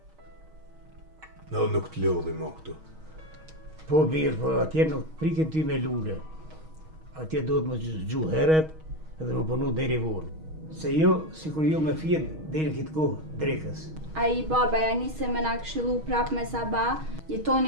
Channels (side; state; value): left; late; 6.3 ms